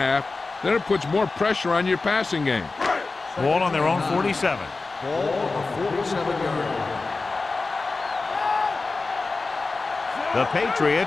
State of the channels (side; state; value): right; quieter; 3.8 dB